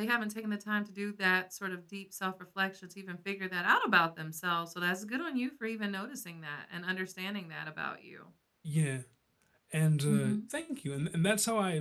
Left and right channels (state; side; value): identical; both; correlation 1.00